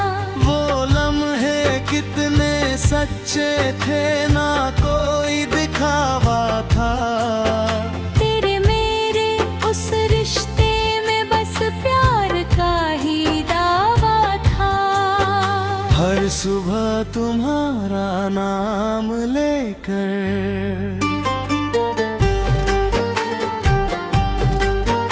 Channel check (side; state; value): both; identical; correlation 1.00